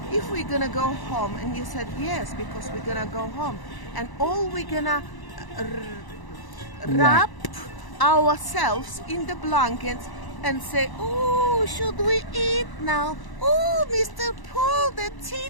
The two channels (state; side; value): late; right; 1.0 ms